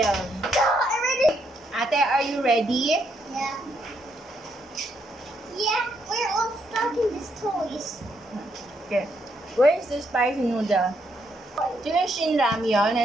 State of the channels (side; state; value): both; normal; correlation 0.76